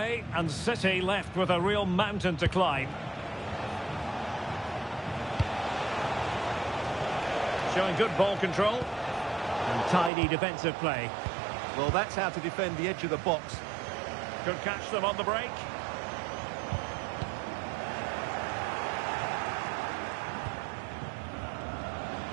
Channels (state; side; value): drops out; left; at 10.1 s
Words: and City left with a real mountain to climb. Showing good ball control and tidy defensive play. Well, that's how to defend the edge of the box. Could catch them on the break.